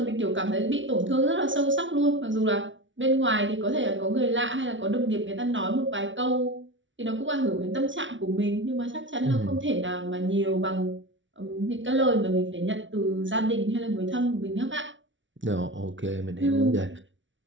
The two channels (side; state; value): left; late; 0.56 ms